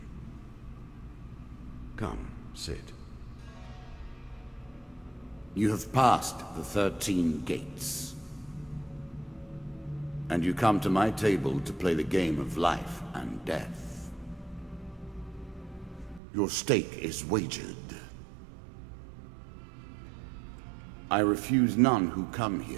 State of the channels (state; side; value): drops out; left; at 16.2 s